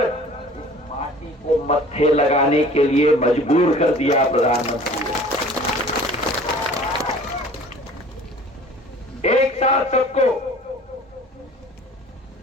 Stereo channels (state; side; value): normal; both; correlation 0.47